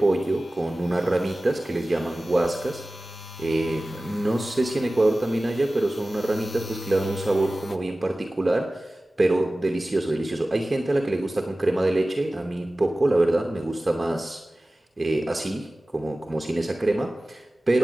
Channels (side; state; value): both; normal; correlation 0.97